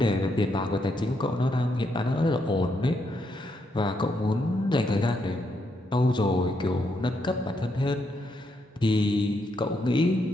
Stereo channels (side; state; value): both; normal; correlation 0.78